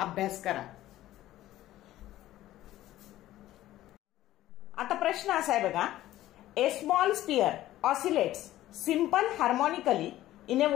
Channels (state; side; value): quieter; right; 14.6 dB